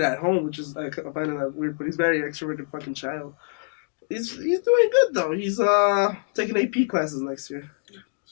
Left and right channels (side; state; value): right; silent; digital silence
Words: at home, which is I find that weird, but he's very extroverted fucking child. He's doing good though. He's taking AP classes next year.